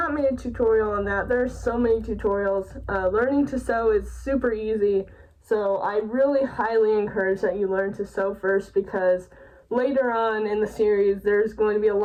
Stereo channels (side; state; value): both; identical; correlation 1.00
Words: made a tutorial on that. There are so many tutorials. Learning to sew is super easy, so I really highly encourage that you learn to sew first, because later on in the series, there's going to be a